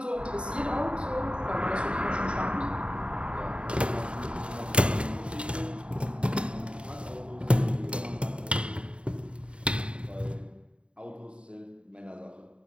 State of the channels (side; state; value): left; late; 0.056 ms